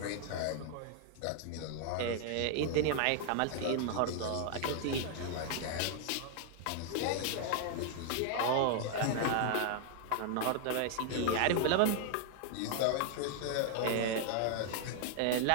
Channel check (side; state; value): both; different; correlation -0.01